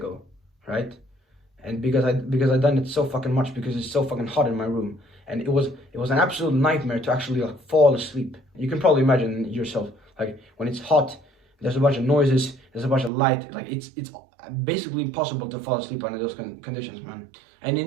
right? And because I done it so fucking much because it's so fucking hot in my room, and it was an absolute nightmare to actually like fall asleep. You can probably imagine yourself, like when it's hot, there's a bunch of noises, there's a bunch of light, like it's basically impossible to fall asleep under those conditions, man. And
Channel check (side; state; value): left; drops out; at 13.1 s